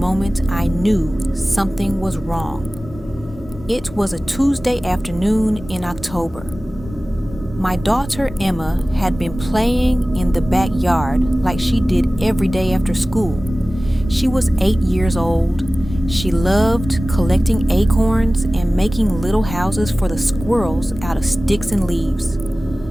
I knew something was wrong. It was a Tuesday afternoon in October. My daughter Emma had been playing in the backyard like she did every day after school. She was 8 years old. She loved collecting acorns and making little houses for the squirrels out of sticks and leaves.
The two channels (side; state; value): both; normal; correlation 0.97